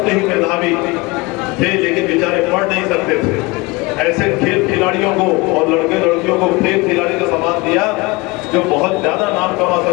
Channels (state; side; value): quieter; right; 24.0 dB